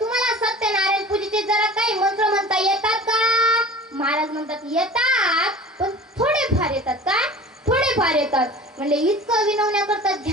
सत्यनारायण पूजेचे जरा काही मंत्र म्हणता येतात का? महाराज म्हणतात येतात, पण थोडेफार येतात. काय? थोडेफार येतात. म्हणले इतकं विनवण्या करतात,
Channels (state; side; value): normal; both; correlation 0.40